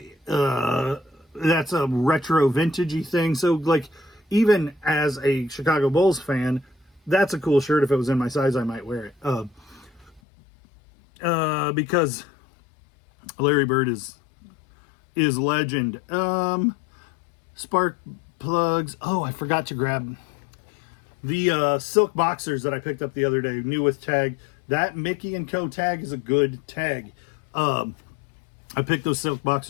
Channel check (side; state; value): right; drops out; at 10.2 s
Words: a retro vintagey thing. So like, even as a Chicago Bulls fan, that's a cool shirt. If it was in my size, I might wear it. Because Larry Bird is legend. Spark plugs. Oh, I forgot to grab the silk boxers that I picked up the other day, new with tag. That Mickey & Co. tag is a good tag. I picked those silk